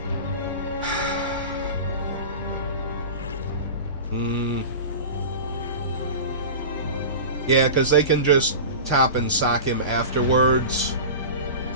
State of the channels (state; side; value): inverted; both; correlation -0.31